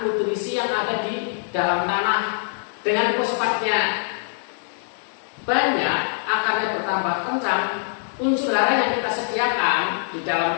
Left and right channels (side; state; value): right; silent; 63 dB below the other